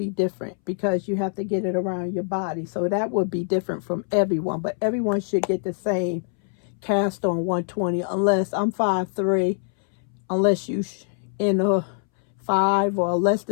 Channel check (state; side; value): silent; right; 62 dB below the other